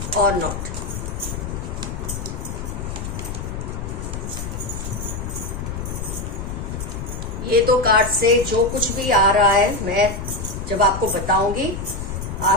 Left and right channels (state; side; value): noise; left; rumble, 6 dB below the sound